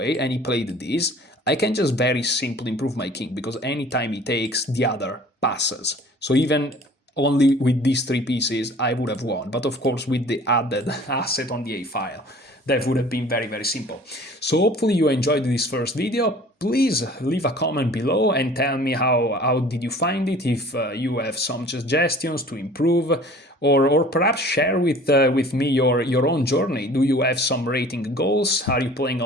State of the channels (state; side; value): normal; both; correlation 0.48